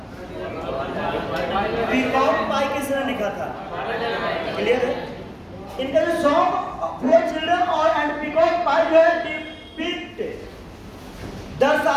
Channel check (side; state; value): both; identical; correlation 1.00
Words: पीकॉक पाई किसने लिखा था? क्लियर है? इनका जो सॉन्ग फॉर चिल्ड्रन और एंड पीकॉक पाई जो है डिपिक्ट